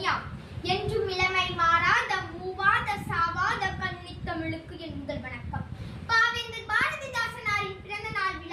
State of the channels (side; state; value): both; identical; correlation 1.00